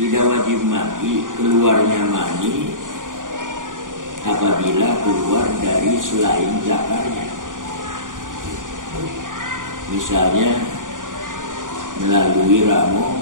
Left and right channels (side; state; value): left; late; 0.88 ms